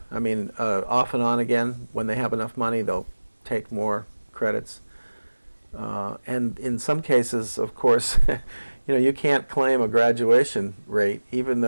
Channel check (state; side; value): inverted; both; correlation -1.00